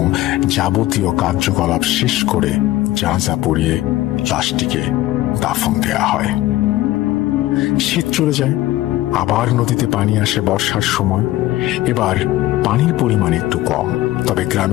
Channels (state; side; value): quieter; right; 16.1 dB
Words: যাবতীয় কার্যকলাপ শেষ করে জানাজা পড়িয়ে লাশটিকে দাফন দেয়া হয়। শীত চলে যায়, আবার নদীতে পানি আসে বর্ষার সময়। এবার পানির পরিমাণ একটু কম, তবে